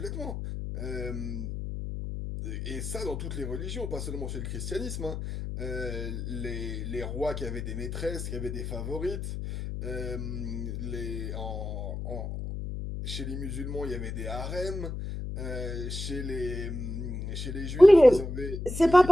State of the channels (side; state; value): left; noise; hum, 5 dB below the sound